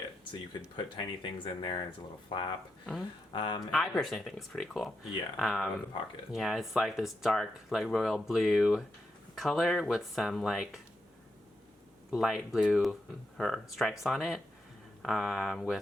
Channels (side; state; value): both; normal; correlation 0.85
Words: So you could put tiny things in there. And it's a little flap. I personally think it's pretty cool. Yeah, I love the pocket. Yeah, it's like this dark, like royal blue color with some like light blue stripes on it,